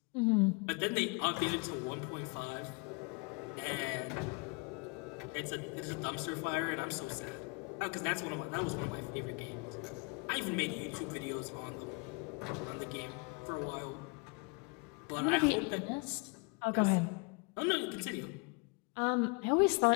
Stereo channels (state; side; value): quieter; right; 31.6 dB